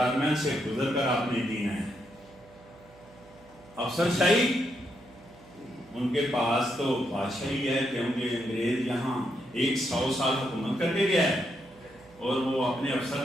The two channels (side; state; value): right; noise; hum, 25 dB below the sound